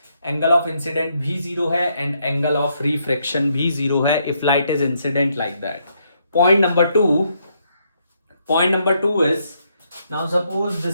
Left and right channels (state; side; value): inverted; both; correlation -0.75